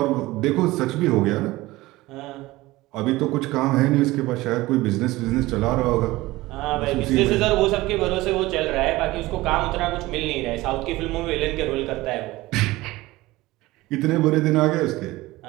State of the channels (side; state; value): left; quieter; 19.0 dB